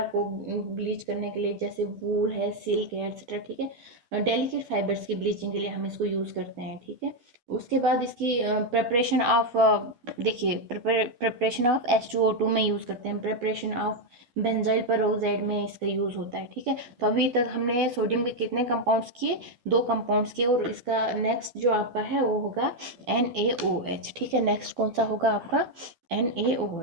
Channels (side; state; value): left; late; 12 ms